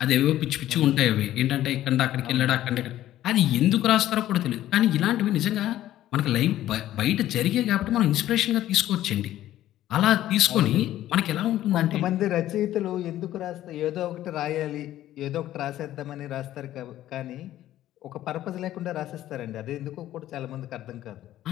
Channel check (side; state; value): right; quieter; 13.4 dB